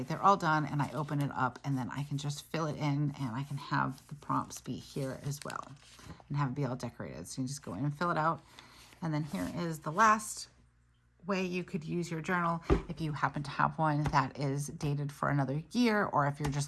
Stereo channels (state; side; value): identical; both; correlation 1.00